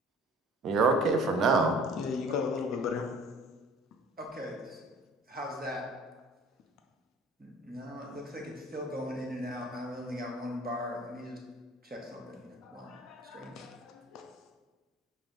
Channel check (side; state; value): both; normal; correlation 0.49